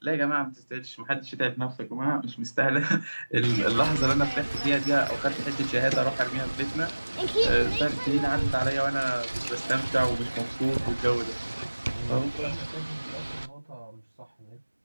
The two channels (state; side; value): inverted; both; correlation -1.00